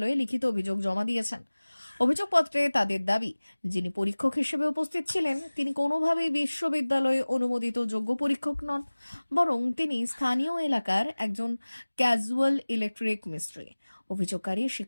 লিখিত অভিযোগ জমা দিয়েছেন। অভিযোগপত্রে তাদের দাবি, যিনি পরীক্ষক হিসেবে উপস্থিত ছিলেন তিনি কোনোভাবেই বিশ্ববিদ্যালয়ে অনুমোদিত যোগ্য পরীক্ষক নন, বরং তিনি স্থানীয় এলাকার একজন ক্যাজুয়াল ইলেকট্রিক মিস্ত্রি। অভিযোগকারী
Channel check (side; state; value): both; inverted; correlation -1.00